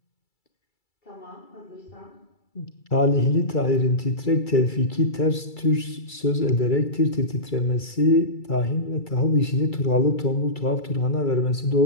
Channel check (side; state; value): right; late; 2.3 ms